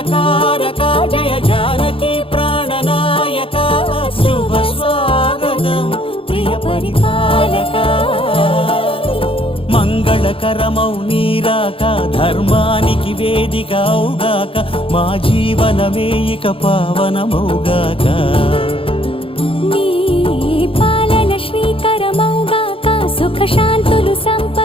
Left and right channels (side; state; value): right; late; 0.26 ms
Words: మంగళకారక జయ జానకి ప్రాణనాయక శుభ స్వాగతం ప్రియ పరిపాలక మంగళకరమౌ నీరాక ధర్మానికి వేదిక అవుగాక మా జీవనమే ఇక పావనమౌగాక నీ పాలన శ్రీకరమౌగాక సుఖ శాంతులు